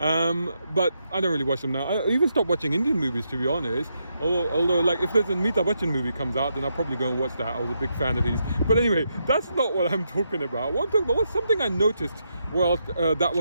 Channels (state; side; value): inverted; both; correlation -0.81